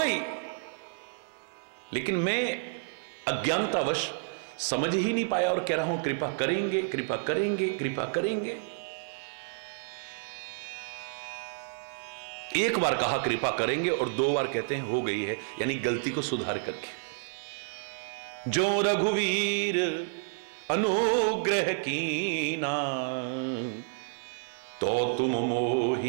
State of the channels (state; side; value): silent; left; 58 dB below the other